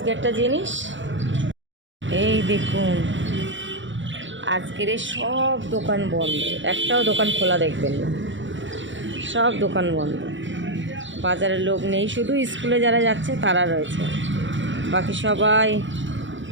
একটা জিনিস, এই দেখুন, আজকের সব দোকান বন্ধ, একটাও দোকান খোলা দেখবেন না, সব দোকান বন্ধ। বাজারে লোক নেই, শুধু স্কুলে যারা যাচ্ছে তারা রয়েছে, বাকি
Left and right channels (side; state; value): left; late; 0.55 ms